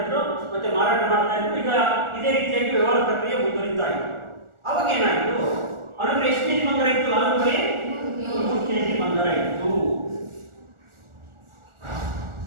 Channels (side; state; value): left; late; 1.4 ms